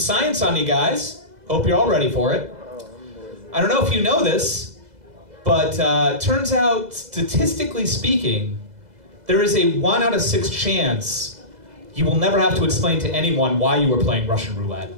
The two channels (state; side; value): late; left; 2.0 ms